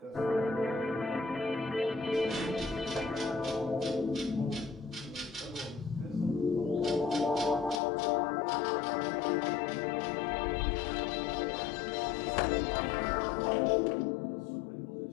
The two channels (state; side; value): drops out; right; at 7.8 s